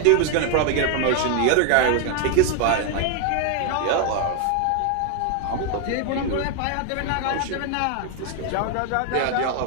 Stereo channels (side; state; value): both; different; correlation 0.01